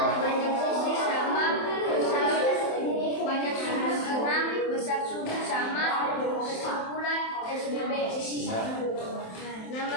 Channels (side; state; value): right; late; 27 ms